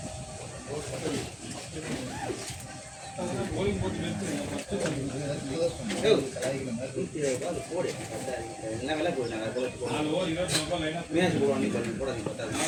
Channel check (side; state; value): both; identical; correlation 1.00